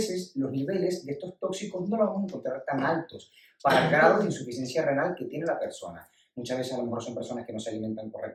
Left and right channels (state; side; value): identical; both; correlation 1.00